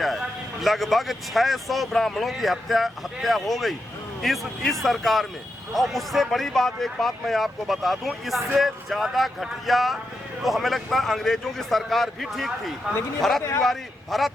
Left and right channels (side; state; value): both; normal; correlation 0.86